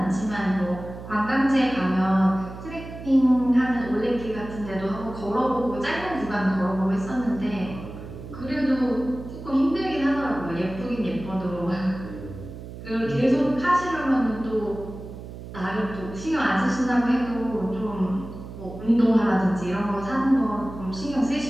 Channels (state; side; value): noise; right; hum, 12 dB below the sound